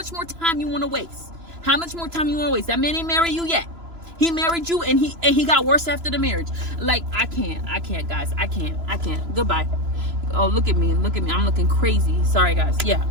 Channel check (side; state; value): left; late; 3.0 ms